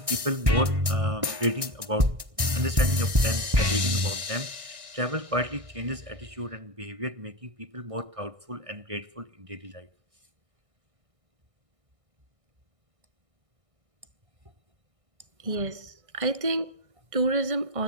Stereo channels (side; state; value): left; late; 1.6 ms